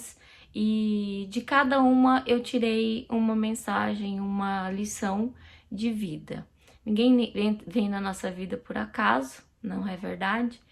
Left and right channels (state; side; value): identical; both; correlation 1.00